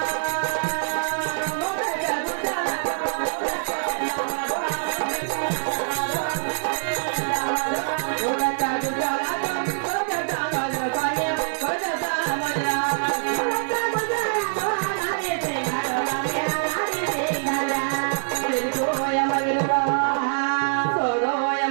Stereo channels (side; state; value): left; silent; digital silence